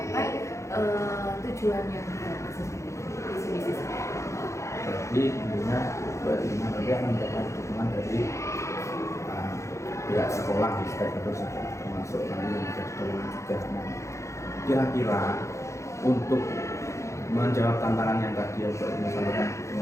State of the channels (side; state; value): right; late; 0.14 ms